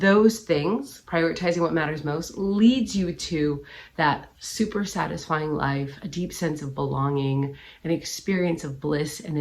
things, prioritizing what matters most, leads you to that super satisfying life, a deep sense of belonging, an experience of bliss and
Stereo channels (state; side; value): identical; both; correlation 1.00